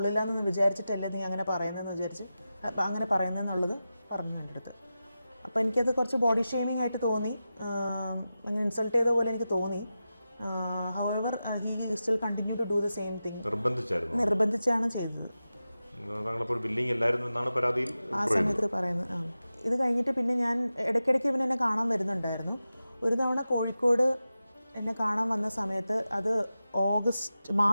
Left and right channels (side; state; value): both; inverted; correlation -0.93